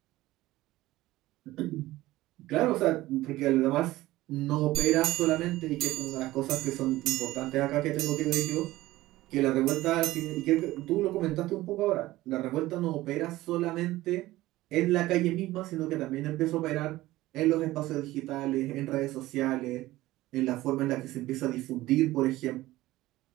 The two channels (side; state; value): left; quieter; 17.2 dB